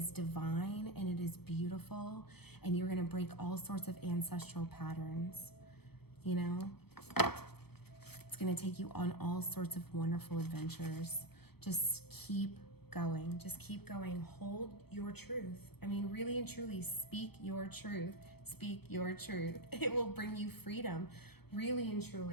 divine and it is beautiful, and you're going to break all sorts of ancestral patterns. You know, it's going to take you on all sorts of wonderful adventures. Just keep going. Just keep going. Hold your truth. I mean, really and truly, speak your truth. Speak your truth. It will bring you freedom. Really and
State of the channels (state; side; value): late; right; 0.97 ms